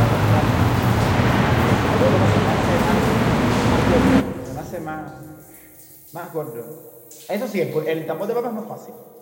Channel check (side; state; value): both; identical; correlation 1.00